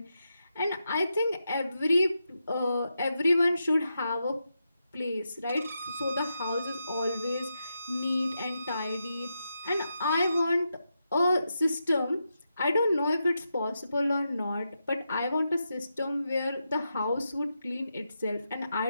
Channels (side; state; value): both; inverted; correlation -0.86